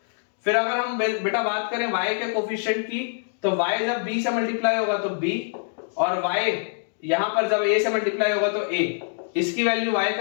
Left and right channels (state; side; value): silent; right; digital silence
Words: फिर अगर हम बेटा बात करें y के कोफिशिएंट की तो y जब b से मल्टीप्लाई होगा तो b और y यहां पर जब a से मल्टीप्लाई होगा तो a, इसकी वैल्यू y